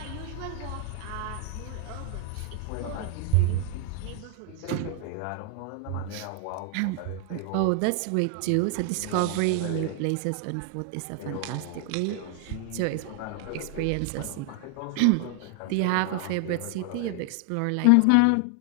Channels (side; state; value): both; different; correlation 0.00